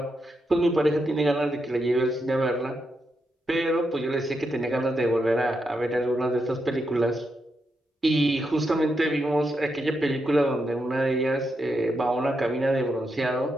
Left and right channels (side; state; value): both; normal; correlation 0.84